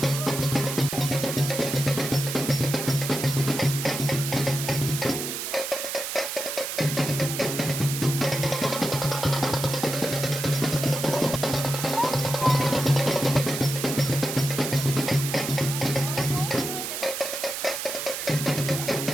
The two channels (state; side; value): noise; right; hiss, 4 dB below the sound